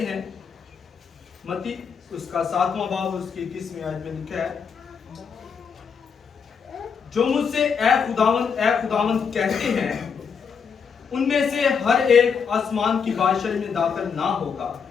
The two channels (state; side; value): quieter; right; 6.3 dB